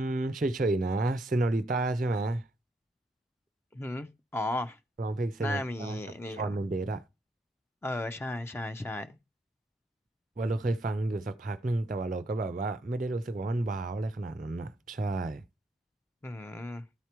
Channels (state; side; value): normal; both; correlation 0.76